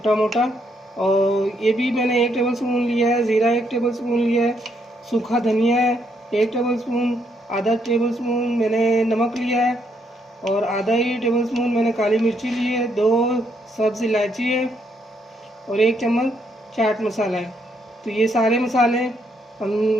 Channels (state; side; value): normal; both; correlation 0.74